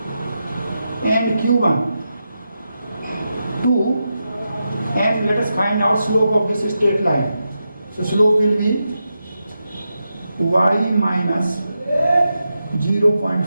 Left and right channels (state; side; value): inverted; both; correlation -0.88